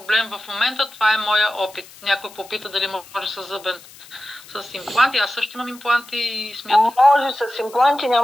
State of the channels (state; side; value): noise; left; hiss, 21 dB below the sound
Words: в момента. Това е моя опит. Някой попита дали може с зъбен с импланти. Аз също имам импланти и смятам. Може с импланти,